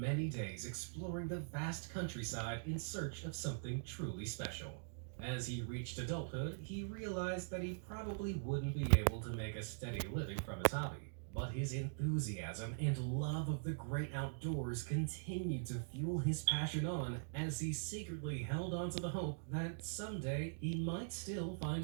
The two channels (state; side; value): silent; left; digital silence